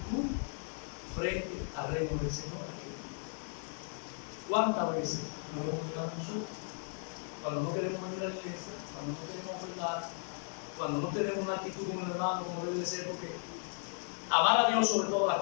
frente al reino del Señor aquí. ¿Cuántas veces lo hemos negado nosotros? Cuando no queremos venir a la iglesia, cuando no queremos ofrendar, cuando no tenemos una actitud con el hermano como debe de ser, porque amar a Dios sobre todas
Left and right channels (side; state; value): right; silent; 54 dB below the other